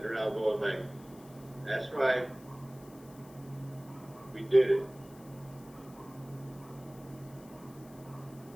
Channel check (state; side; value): noise; left; hiss, 24 dB below the sound